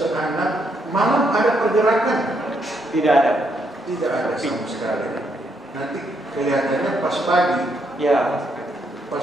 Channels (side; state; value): both; normal; correlation 0.76